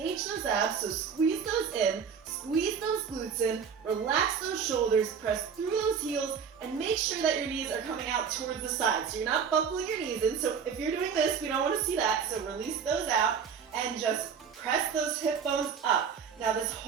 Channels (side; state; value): left; quieter; 6.7 dB